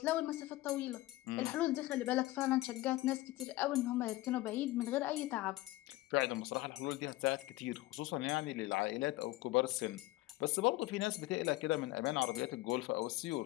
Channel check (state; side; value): quieter; right; 18.0 dB